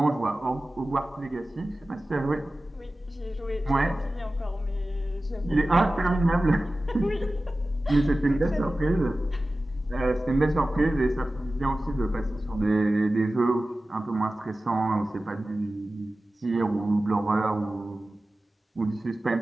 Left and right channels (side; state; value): both; normal; correlation 0.96